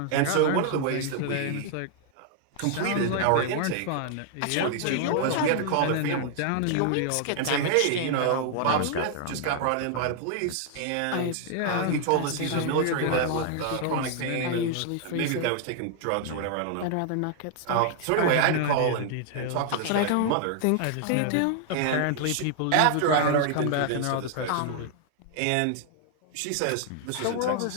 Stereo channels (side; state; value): both; different; correlation 0.00